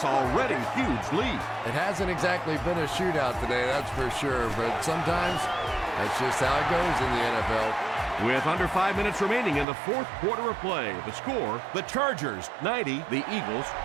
already huge lead. It hasn't exactly been a shootout today, that's for sure. But sometimes that's just how it goes in the NFL. With under 5 minutes remaining in the 4th quarter of play, the score, the Chargers 90, the Eagles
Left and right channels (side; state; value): left; drops out; at 9.7 s